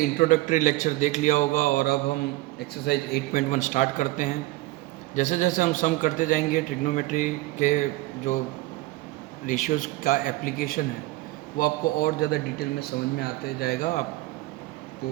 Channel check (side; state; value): left; quieter; 19.0 dB